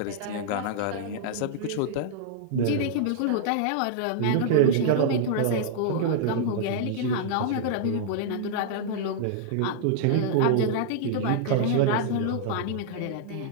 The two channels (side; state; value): both; different; correlation -0.01